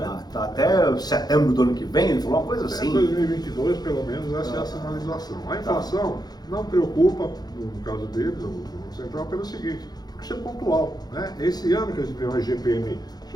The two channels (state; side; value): late; right; 0.19 ms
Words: Tá até setembro do ano que vem, ele falou uma coisa assim. Até 2022, pelo menos, essa é a sinalização. A inflação não preocupa, no caso deles, o Banco Central, pelo seguinte, porque isso é pontual. Né? Esse ano que a gente viu o IGPM